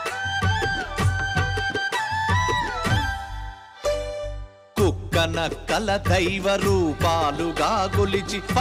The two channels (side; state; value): both; identical; correlation 1.00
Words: నక్కల దైవ రూపాలుగా గొలిచి